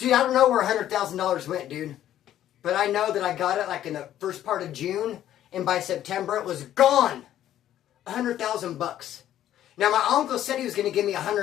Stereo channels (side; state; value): right; quieter; 11.9 dB